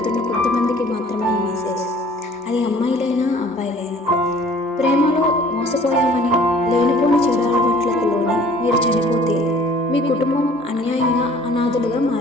కొంతమందికి మాత్రమే ఈ మెసేజ్. అది అమ్మాయిలైనా అబ్బాయిలైనా. ప్రేమలో మోసపోయామని లేనిపోని చెడు అలవాట్లకు లోనే మీరు చనిపోతే మీ కుటుంబం అన్యాయంగా అనాథులుగా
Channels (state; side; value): normal; both; correlation 0.53